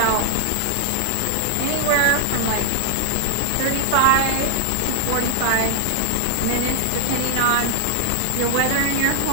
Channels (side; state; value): both; different; correlation 0.00